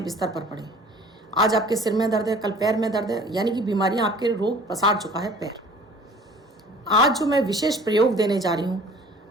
बिस्तर पर पड़े हैं। आज आपके सिर में दर्द है, कल पैर में दर्द है, यानी कि बीमारियां आपके रोग पसार चुका है पैर। आज जो मैं विशेष प्रयोग देने जा रही हूँ,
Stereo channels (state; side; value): normal; both; correlation 0.48